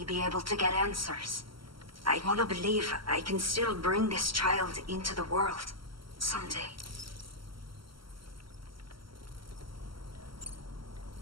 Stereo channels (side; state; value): left; late; 0.74 ms